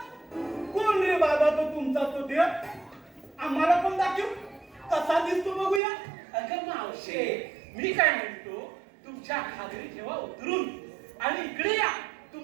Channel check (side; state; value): left; drops out; at 5.8 s